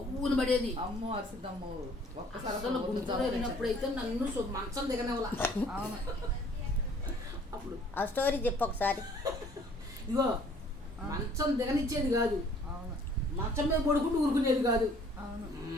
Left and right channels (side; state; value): both; normal; correlation 0.57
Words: పడేది. అమ్మో అరిసిద్దమ్మో. ఒక్కసారి గుంటూరు వెళ్ళినప్పుడైతే నన్ను మంచం దిగనేవాళ్ళ. అప్పుడు ఆ స్టోరీ చెప్పు ఒకసారి. ఇగో మంచం దిగనిచ్చేది కాదు, మంచం మీద పడుకుంటూ ఊరుకునేది కాదు.